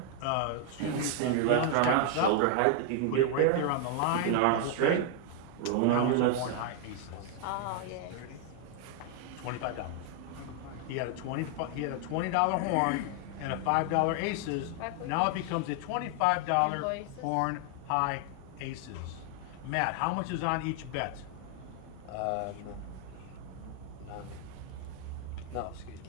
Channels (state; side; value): different; both; correlation 0.00